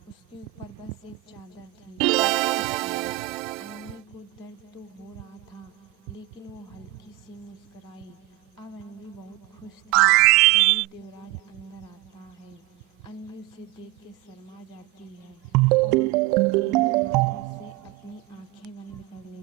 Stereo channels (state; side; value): quieter; left; 19.8 dB